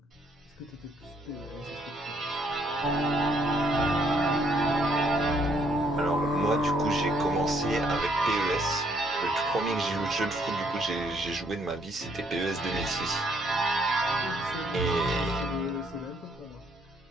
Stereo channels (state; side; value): normal; both; correlation 0.68